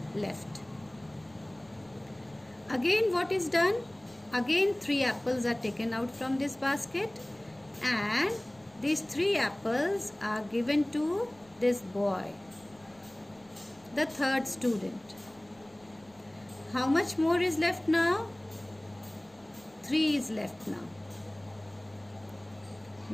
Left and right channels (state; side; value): noise; left; rumble, 30 dB below the sound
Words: left. Again what is done? Again 3 apples are taken out from this basket, and these 3 apples are given to this boy, the third student. How much more is left now? 3 is left now.